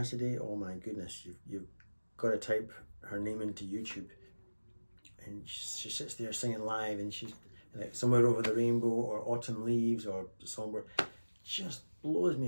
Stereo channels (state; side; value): inverted; both; correlation -1.00